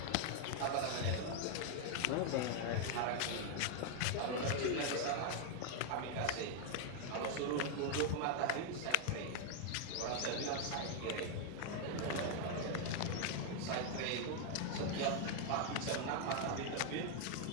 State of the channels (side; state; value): both; different; correlation 0.00